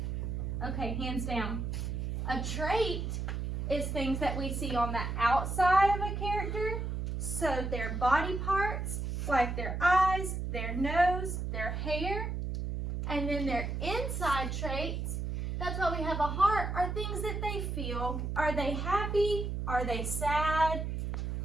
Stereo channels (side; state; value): right; noise; hum, 3 dB below the sound